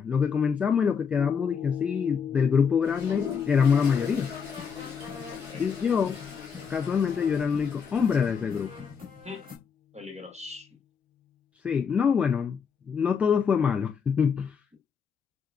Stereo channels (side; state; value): right; quieter; 6.5 dB